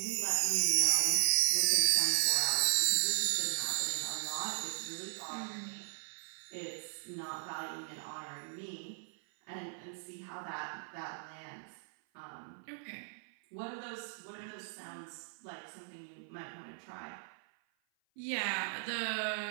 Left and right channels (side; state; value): left; silent; 53 dB below the other